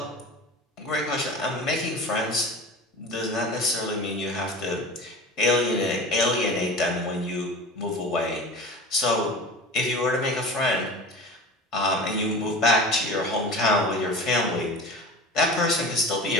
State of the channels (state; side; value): normal; both; correlation 0.34